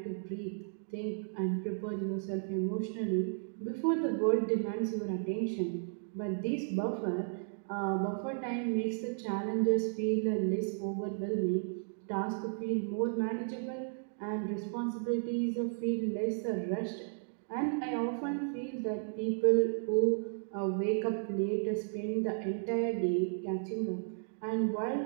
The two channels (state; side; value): silent; left; digital silence